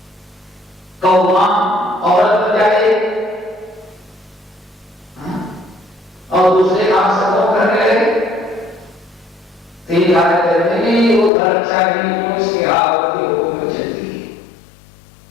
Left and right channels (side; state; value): right; drops out; at 11.3 s